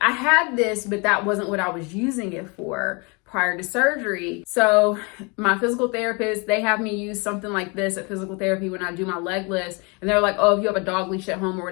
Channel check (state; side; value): quieter; right; 30.6 dB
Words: had this, but that wasn't what I was using it for prior to surgery. So my physical therapist, they have me use something like this at physical therapy when I do my leg lifts. And they're like, oh, if you have a dog leash at home or